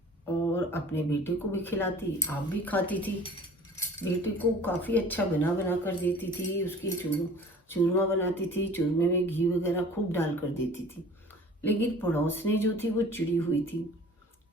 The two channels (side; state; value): both; normal; correlation 0.46